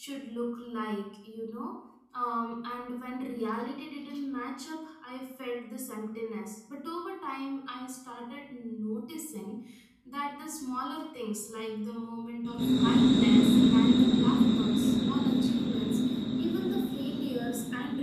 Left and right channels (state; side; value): identical; both; correlation 1.00